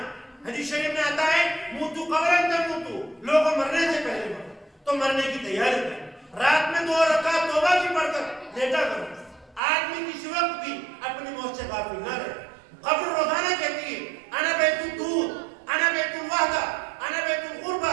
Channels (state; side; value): drops out; left; at 9.6 s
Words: حدیث شریف میں آتا ہے موتو قبرن تموتو, لوگوں مرنے سے پہلے مرو. تو مرنے کی تیاری کرو. رات میں 2 رکعت توبہ کی پڑھ کر لیٹا کرو. آدمی کسی وقت بھی اپنی موت سے غافل نہ رہے. قبر روزانہ کہتی ہے انا بیت الدود, انا بیت الوحدہ, انا بیت